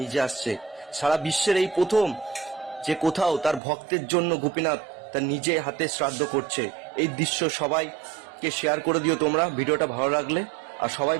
নিজে আসছে। সারা বিশ্বের এই প্রথম যে কোথাও তার ভক্তের জন্য গোপীনাথ তার নিজে হাতে শ্রাদ্ধ করছে। এই দৃশ্য সবাইকে শেয়ার করে দিও তোমরা ভিডিওটা ভালো লাগলে, আর সবাই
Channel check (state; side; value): drops out; left; at 3.6 s